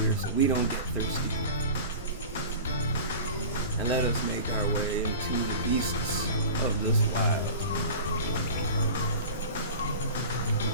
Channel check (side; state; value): both; inverted; correlation -0.36